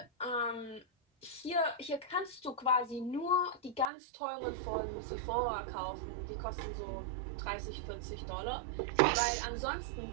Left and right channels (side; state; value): left; drops out; at 3.9 s